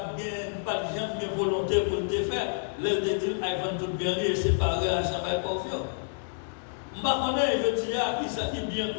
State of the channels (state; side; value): silent; right; digital silence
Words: de gens de volonté pour le faire. Le dit avant tout bien et séparer à jamais confiant. Je ne connais pas, je dis, qui ça qui bien